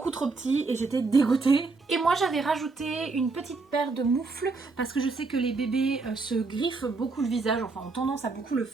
trop petit et j'étais dégoûtée. Et moi j'avais rajouté une petite paire de moufles parce que je sais que les bébés se griffent beaucoup le visage, enfin ont tendance à beaucoup le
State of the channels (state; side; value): quieter; left; 3.9 dB